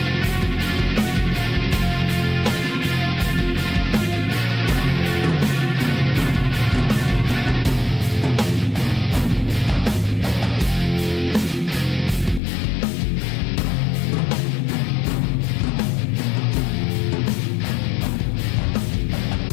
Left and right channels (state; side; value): drops out; right; at 12.4 s